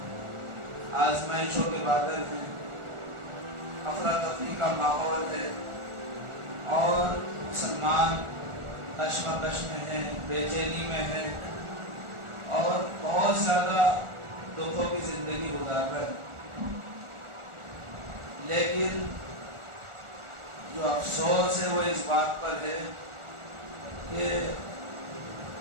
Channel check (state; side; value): late; left; 1.4 ms